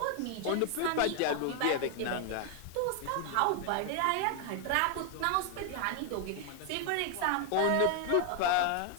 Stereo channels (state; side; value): different; both; correlation 0.00